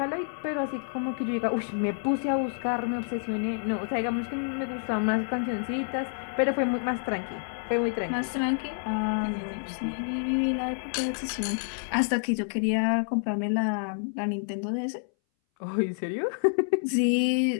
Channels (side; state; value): right; silent; 59 dB below the other